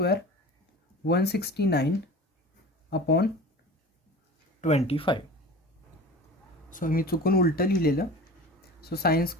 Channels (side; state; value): both; normal; correlation 0.37